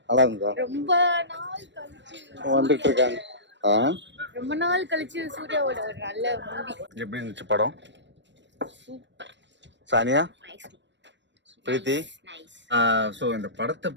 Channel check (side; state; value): left; late; 0.53 ms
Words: நல்லா இருந்தா? ரொம்ப நாள் கழிச்சு வந்துட்டு இருக்காங்க. ரொம்ப நாள் கழிச்சு சூர்யாவோட ஒரு நல்ல மூவி. எப்படி இருந்துச்சு படம்? சானியா, பிரீத்தி, ஸோ இந்த படத்தை